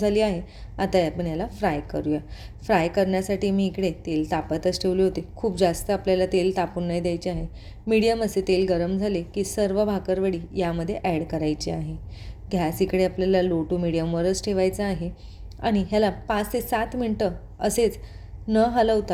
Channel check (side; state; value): both; identical; correlation 1.00